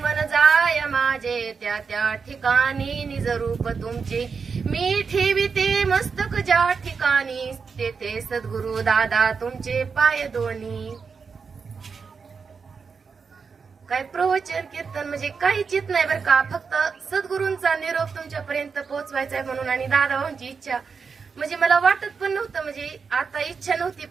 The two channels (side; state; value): left; quieter; 5.5 dB